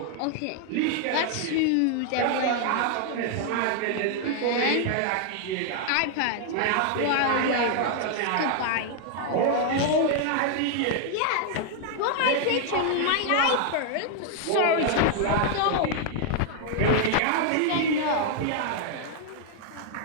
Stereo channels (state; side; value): different; both; correlation 0.00